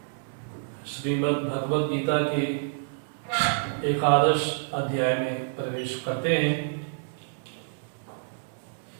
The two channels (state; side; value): silent; left; digital silence